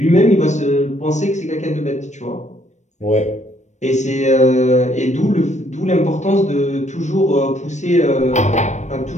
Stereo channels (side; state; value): right; late; 0.34 ms